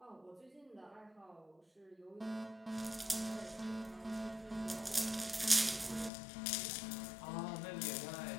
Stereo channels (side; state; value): right; drops out; at 6.1 s